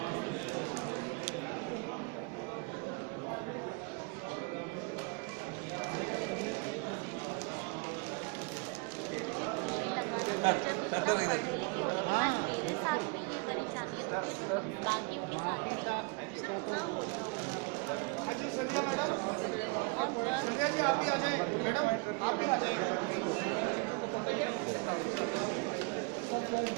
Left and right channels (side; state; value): left; quieter; 30.9 dB